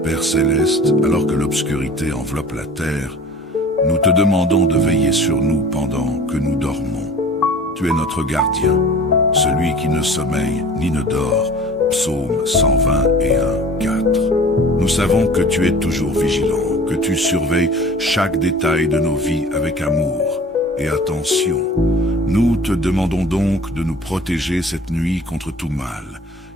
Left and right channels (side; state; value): both; normal; correlation 0.44